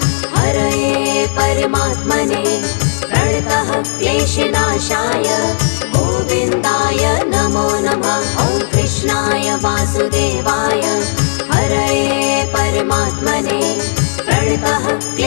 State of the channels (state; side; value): silent; right; digital silence